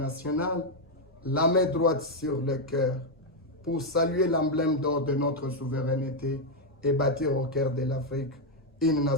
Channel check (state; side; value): normal; both; correlation 0.02